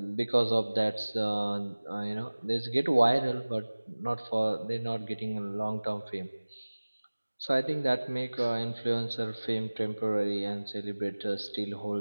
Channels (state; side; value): inverted; both; correlation -1.00